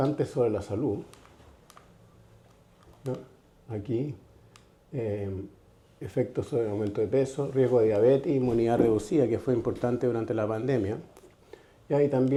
sobre la salud, ¿no? Aquí, efectos sobre el aumento de peso, riesgo de diabetes, inmunidad reducida, que fue importante durante la pandemia. Y ahí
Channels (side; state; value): both; identical; correlation 1.00